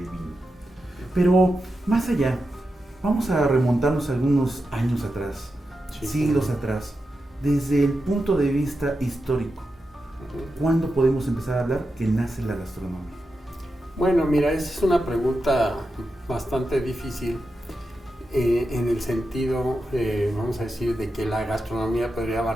Vino. Pero más allá, Vamos a remontarnos algunos años atrás, Sí. siglos atrás, desde el punto de vista histórico. ¿Cuándo podemos empezar a hablar que nace la gastronomía? Bueno, mira, esa es una pregunta bastante difícil en el sentido, vamos a decir, de que la gastronomía podría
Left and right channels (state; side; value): normal; both; correlation 0.89